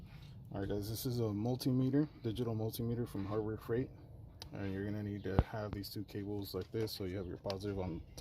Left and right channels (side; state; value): both; identical; correlation 1.00